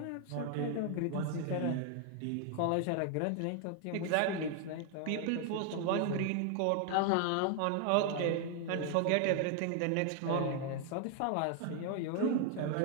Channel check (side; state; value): both; different; correlation 0.00